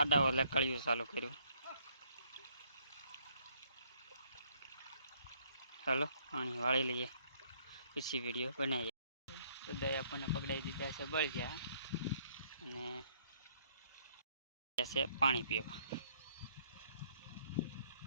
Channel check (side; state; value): both; inverted; correlation -0.66